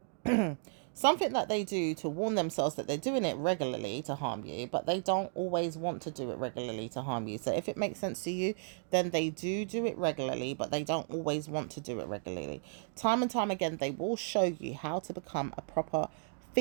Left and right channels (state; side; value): silent; left; digital silence